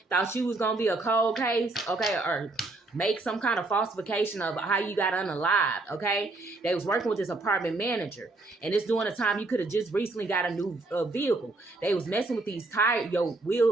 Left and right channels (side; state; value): left; quieter; 3.0 dB